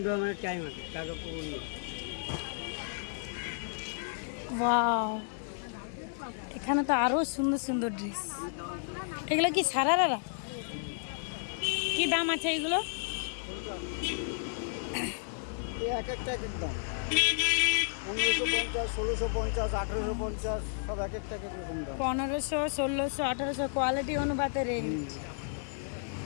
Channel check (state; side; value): silent; right; digital silence